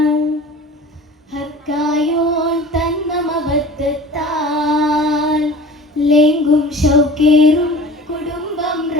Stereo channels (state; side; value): normal; both; correlation 0.41